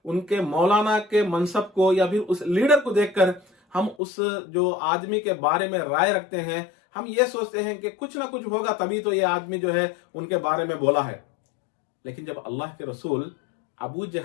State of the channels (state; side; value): drops out; right; at 4.0 s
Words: उनके मौलाना के मनसब को या फिर उस लीडर को देखकर हम उस जो आदमी के बारे में राय रखते हैं। हम ये सोचते हैं कि कुछ ना कुछ होगा तभी तो ये आदमी जो है उनके बारे में बोला है। लेकिन जब अल्लाह के रसूल अबू